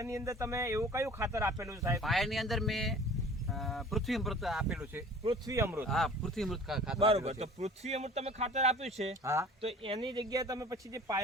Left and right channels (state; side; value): normal; both; correlation 0.46